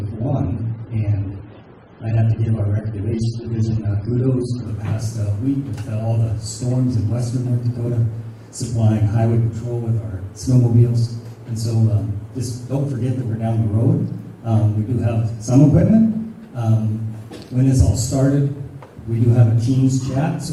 one, and I have to give our recreation division kudos for the past week with all the storms in western North Dakota, supplying highway patrol with our snowmobiles. And so just don't forget that we're down the road. We do have some equipment. When this all started, we do have a Teams chat,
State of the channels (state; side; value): identical; both; correlation 1.00